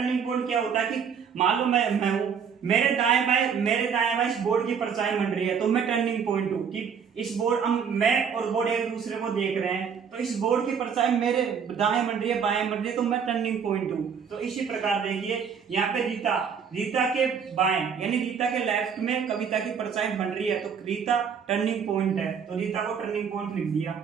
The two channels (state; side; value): quieter; left; 6.9 dB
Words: पॉइंट क्या होता है कि मान लो मैं हूं, मेरे दाएं बाएं इस बोर्ड की परछाई बन रही है, तो मैं टर्निंग पॉइंट हूं कि इस बोर्ड, मैं और बोर्ड एक दूसरे को देख रहे हैं, तो इस बोर्ड की परछाई मेरे दाएं बन रही है, बाएं बन रही है, तो मैं टर्निंग पॉइंट हूं। तो इसी प्रकार देखिए यहाँ पे रीता के बाएं यानी रीता के लेफ्ट में कविता की परछाई बन रही है, तो रीता टर्निंग पॉइंट है, तो रीता को टर्निंग पॉइंट लिख दिया।